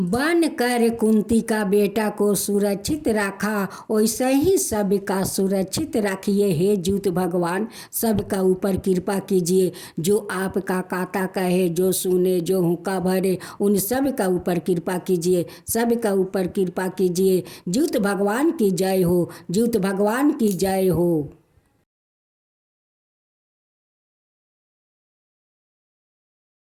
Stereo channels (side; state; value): both; identical; correlation 1.00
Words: कर कुंती का बेटा को सुरक्षित रखा, वैसे ही सबका सुरक्षित रखिए। हे ज्यूत भगवान, सबका ऊपर कृपा कीजिए, जो आपका काता कहे, जो सुने, जो हुक्का भरे, उन सब का ऊपर कृपा कीजिए, सबका ऊपर कृपा कीजिए। ज्यूत भगवान की जय हो, ज्यूत भगवान की जय हो।